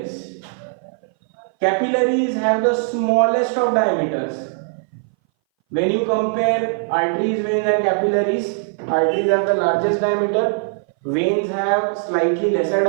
Capillaries have the smallest of diameters. When you compare arteries, veins and capillaries, arteries have the largest diameter, veins have slightly lesser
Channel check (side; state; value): left; silent; 61 dB below the other